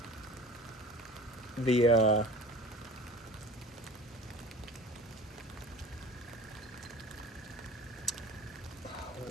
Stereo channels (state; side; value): normal; both; correlation 0.41